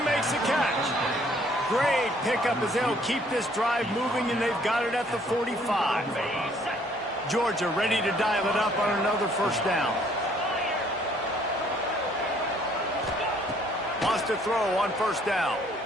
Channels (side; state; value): both; normal; correlation 0.62